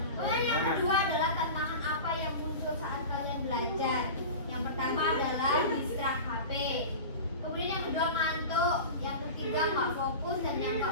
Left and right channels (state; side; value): inverted; both; correlation -0.31